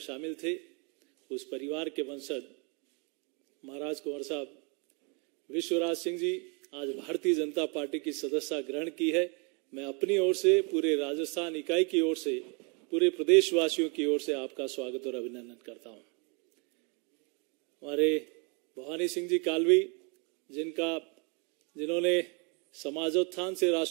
थे। उस परिवार के वंशज महाराज कुंवर साहब विश्वराज सिंह जी आज भारतीय जनता पार्टी की सदस्यता ग्रहण की है। मैं अपनी ओर से, पूरे राजस्थान इकाई की ओर से, पूरे प्रदेशवासियों की ओर से आपका स्वागत और अभिनंदन करता हूं। हमारे भवानी सिंह जी कालवी जिन्होंने समाजोत्थान से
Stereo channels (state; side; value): quieter; left; 33.8 dB